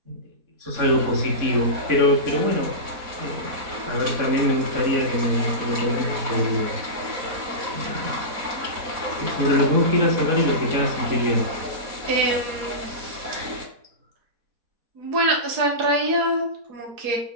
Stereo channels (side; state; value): left; late; 4.1 ms